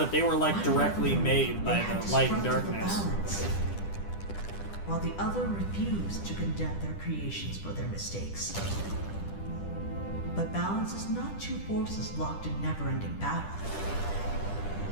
they were like One directly brother, made by they had the light and disrupted the darkness. balance, while the other refused to condemn their creations for their mistakes. But balance is not two forces locked in never-ending battle.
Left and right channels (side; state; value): right; late; 10 ms